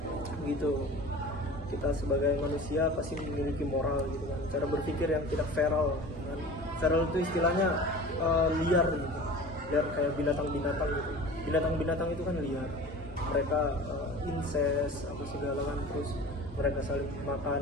gitu. Kita sebagai manusia pasti memiliki moral gitu kan, cara berpikir yang tidak feral kan. Feral itu istilahnya liar gitu, liar kayak binatang-binatang gitu. Binatang-binatang itu kan liar, mereka incest apa segala kan, terus mereka saling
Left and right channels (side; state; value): both; normal; correlation 0.39